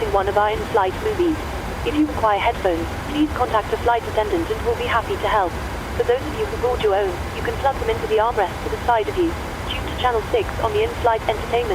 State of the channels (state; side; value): identical; both; correlation 1.00